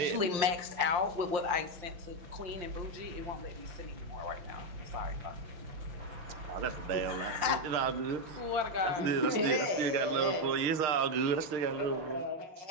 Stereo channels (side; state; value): left; late; 5.7 ms